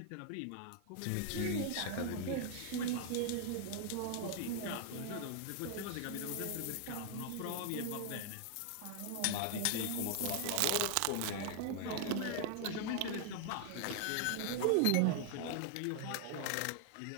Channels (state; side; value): different; both; correlation 0.00